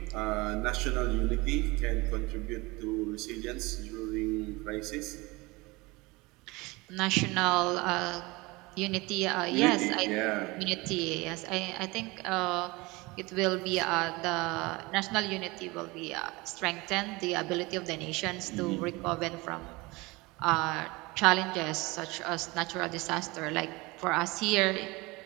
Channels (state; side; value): quieter; left; 23.4 dB